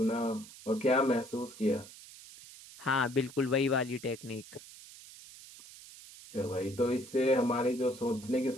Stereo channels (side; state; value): right; noise; hiss, 18 dB below the sound